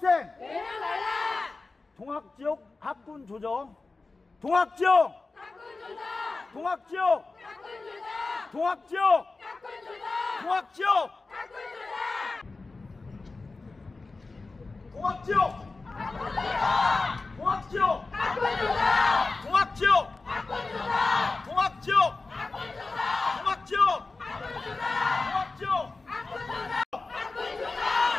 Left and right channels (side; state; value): right; quieter; 3.7 dB